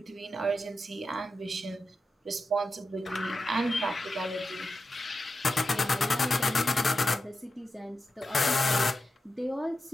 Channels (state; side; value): normal; both; correlation 0.90